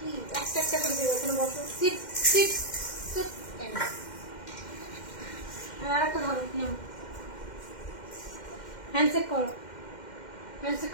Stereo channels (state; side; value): late; right; 2.1 ms